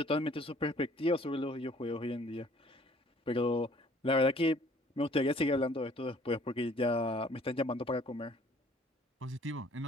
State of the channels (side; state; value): both; normal; correlation 0.57